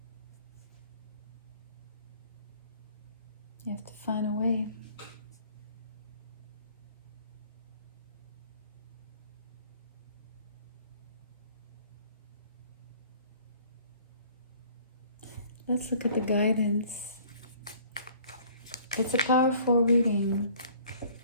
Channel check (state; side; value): inverted; both; correlation -0.54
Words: You have to find a way. Let's look at the guidance. It's a powerful reading.